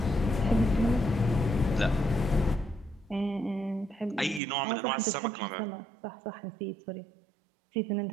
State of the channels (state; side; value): drops out; left; at 4.4 s